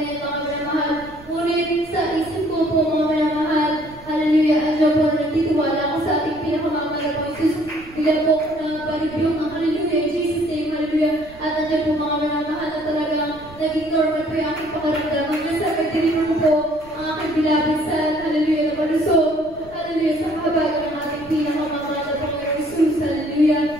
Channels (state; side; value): noise; right; rumble, 21 dB below the sound